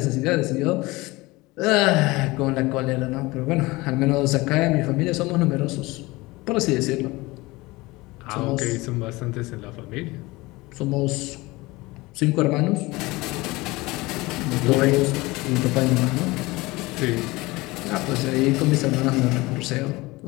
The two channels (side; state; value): right; quieter; 21.7 dB